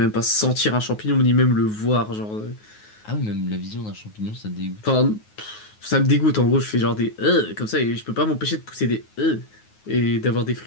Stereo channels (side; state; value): right; late; 9.4 ms